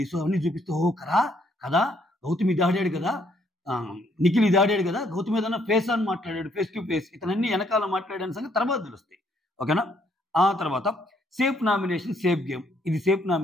అవన్నీ చూపిస్తే ఓ కదా గౌతమ్ ఇది ఆడాడు కదా, నిఖిల్ ఇది ఆడాడు కదా, గౌతమ్ ఏదైనా ఫేస్ ఆన్ మాట్లాడాడు, ఫేస్ టు ఫేస్, ఇతనన్నీ వెనకాల మాట్లాడాని సంగతి తర్వాత తెలుస్తాయి. ఓకేనా, ఆ తర్వాత సేఫ్ నామినేషన్ సేఫ్ గేమ్, ఇది సేఫ్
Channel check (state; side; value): normal; both; correlation 0.69